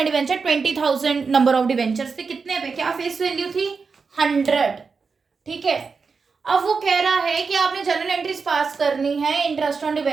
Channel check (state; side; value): quieter; left; 5.0 dB